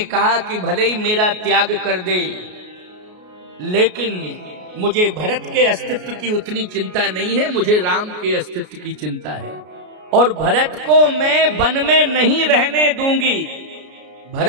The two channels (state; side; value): late; left; 33 ms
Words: कहा कि भले ही मेरा त्याग कर दे, लेकिन मुझे भरत के अस्तित्व की उतनी चिंता नहीं है, मुझे राम के अस्तित्व की चिंता है। और भरत को मैं वन में नहीं रहने दूंगी,